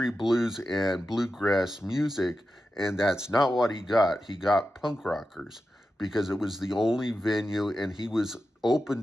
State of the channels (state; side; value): normal; both; correlation 0.91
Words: bluegrass music, and that's not what he got. He got punk rockers because it was the only venue, and he was open